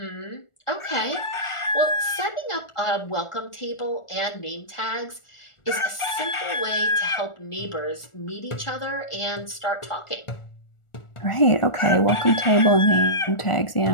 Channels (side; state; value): right; late; 1.4 ms